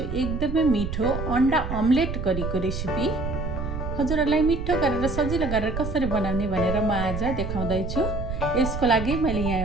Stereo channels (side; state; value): right; noise; rumble, 5 dB below the sound